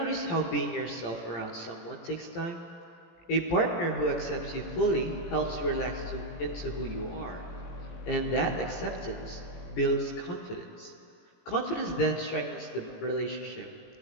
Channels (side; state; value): right; late; 18 ms